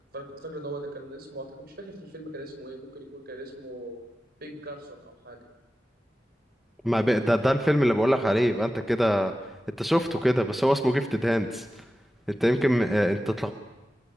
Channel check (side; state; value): both; normal; correlation 0.93